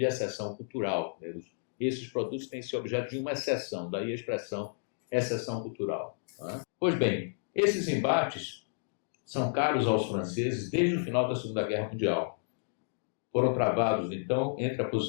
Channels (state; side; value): silent; right; digital silence